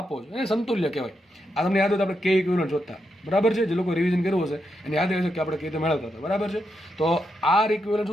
છે એને સમતુલ્ય કહેવાય. આ તમને યાદ હોય તો આપણે K ઇક્વિવેલન્ટ શોધતા, બરાબર છે. જે લોકો રિવિઝન કર્યું હશે એને યાદ હશે કે આપણે કઈ રીતે મેળવતા હતા, બરાબર છે. તો R ઇક્વિવેલન્ટ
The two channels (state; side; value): normal; both; correlation 0.83